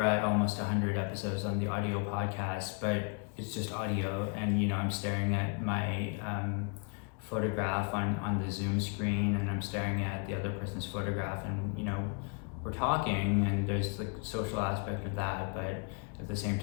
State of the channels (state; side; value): quieter; right; 36.7 dB